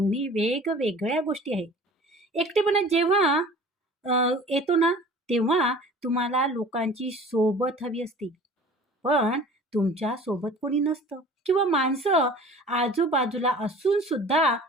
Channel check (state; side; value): normal; both; correlation 0.44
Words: वेगवेगळ्या गोष्टी आहेत. एकटेपणा जेव्हा येतो ना तेव्हा तुम्हाला लोकांची सोबत हवी असते, पण तुमच्या सोबत कोणी नसतं किंवा माणसं आजूबाजूला असून सुद्धा